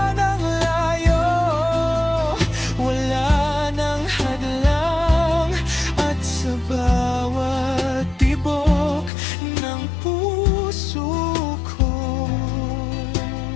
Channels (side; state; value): right; drops out; at 9.1 s